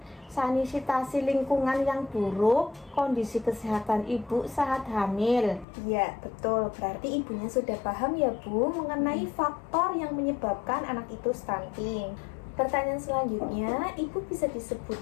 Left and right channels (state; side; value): drops out; right; at 5.7 s